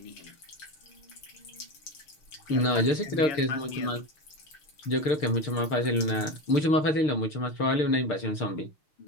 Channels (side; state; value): right; late; 6.6 ms